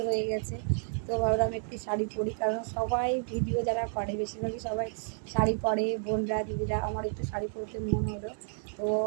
হয়ে গেছে। তো ভাবলাম একটু শাড়ি পরি, কারণ সবাই ভিডিও যারা করে বেশিরভাগই সবাই শাড়ি পরে, বোনরা দিদিরা। আমার একটু শাড়ি পরতে মন হলো, তো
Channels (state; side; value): silent; left; 57 dB below the other